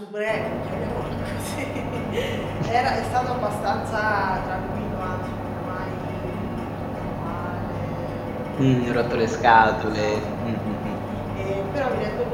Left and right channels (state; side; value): identical; both; correlation 1.00